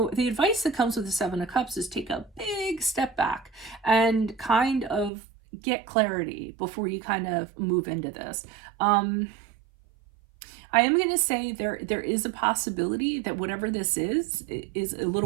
the advice that comes with the Seven of Cups is take a big step back and kind of get clarity before you kind of move into this. I am going to say there is a possibility that whatever this is a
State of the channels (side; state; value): left; drops out; at 5.1 s